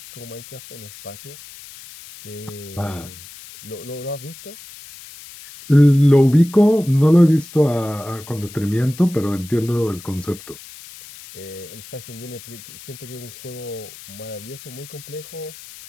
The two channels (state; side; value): noise; left; hiss, 17 dB below the sound